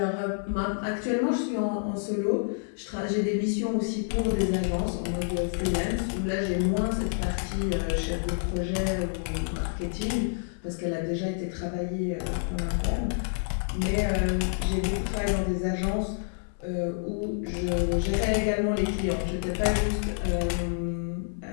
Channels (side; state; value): right; silent; 59 dB below the other